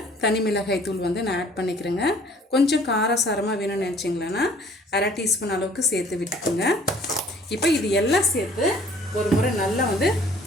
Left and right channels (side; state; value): both; normal; correlation 0.54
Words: தனி மிளகாய் தூள் நான் ஆட் பண்ணிக்கிறேங்க. கொஞ்சம் காரசாரமாக வேணும்னு நினச்சிங்களான்னா அரை டீஸ்பூன் அளவுக்கு சேர்த்து விட்டுக்குங்க. இப்போ இது எல்லாம் சேர்த்து ஒரு முறை நல்லா